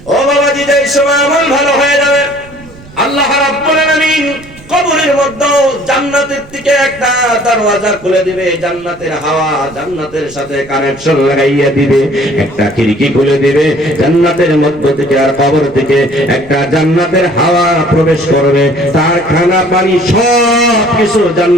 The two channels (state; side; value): noise; right; rumble, 22 dB below the sound